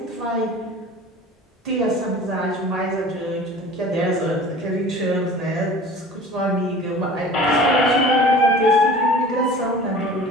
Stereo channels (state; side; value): normal; both; correlation 0.42